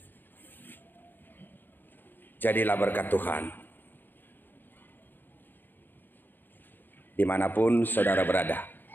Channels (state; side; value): late; right; 0.093 ms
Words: Jadilah berkat Tuhan dimanapun saudara berada,